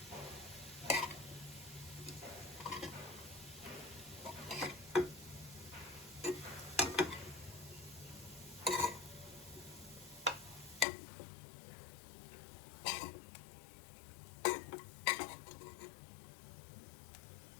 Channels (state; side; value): drops out; right; at 10.9 s